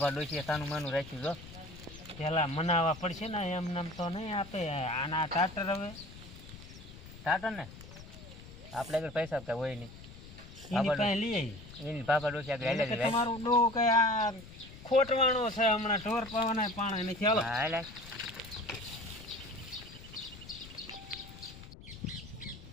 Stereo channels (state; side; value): noise; left; rumble, 16 dB below the sound